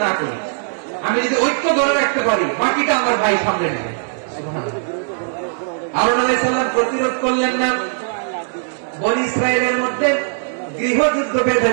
না করি। আমি যদি ঐক্য ধরে রাখতে পারি, বাকিটা আমার ভাই সামনে নেবে। সুবহানাল্লাহ। হারুন আলাইহিস সালাম প্রতিরোধ করলেন না, বনি ইসরাইলের মধ্যে গৃহযুদ্ধ বেঁধে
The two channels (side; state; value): left; silent; digital silence